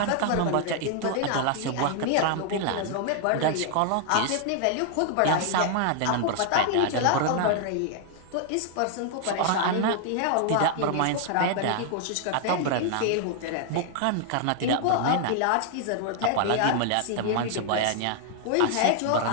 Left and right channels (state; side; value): different; both; correlation 0.00